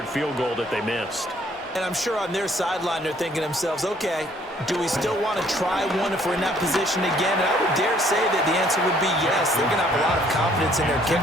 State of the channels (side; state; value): both; normal; correlation 0.62